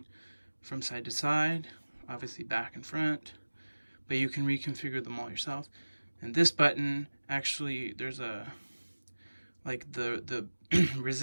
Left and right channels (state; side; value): inverted; both; correlation -1.00